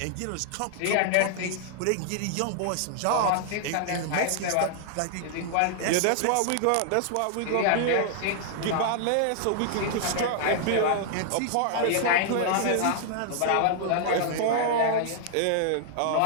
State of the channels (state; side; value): different; both; correlation -0.01